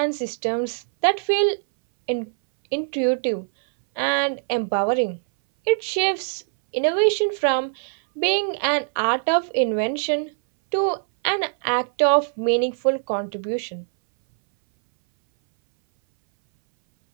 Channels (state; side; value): silent; left; 61 dB below the other